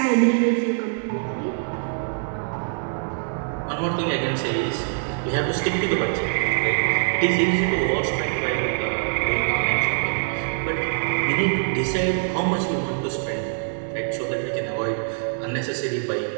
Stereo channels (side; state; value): left; silent; 62 dB below the other